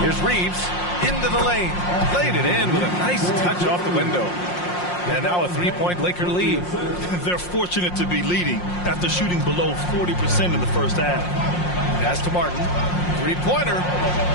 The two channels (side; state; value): right; late; 5.6 ms